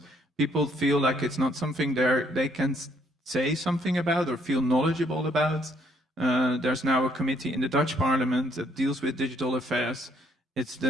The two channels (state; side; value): normal; both; correlation 0.67